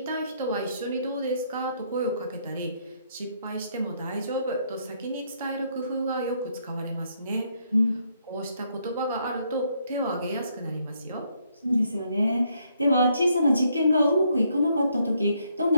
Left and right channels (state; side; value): inverted; both; correlation -0.72